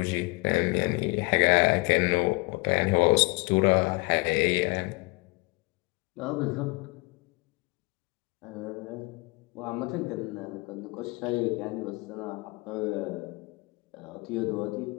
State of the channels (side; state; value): right; quieter; 25.8 dB